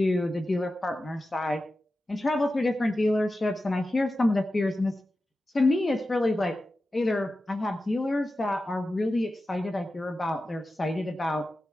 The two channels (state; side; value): normal; both; correlation 0.93